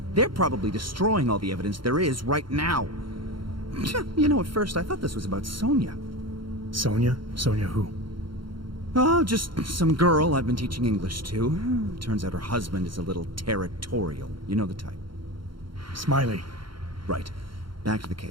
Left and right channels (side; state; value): left; late; 0.73 ms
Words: They're probably destroying all the evidence there is right now. You know, at first I thought this was about Sonia. Sonia? Sonia who? Oh, just some girl I've been teaching English to. Turns out her husband is a little territorial. You know the type. Smiley. Right. Back to the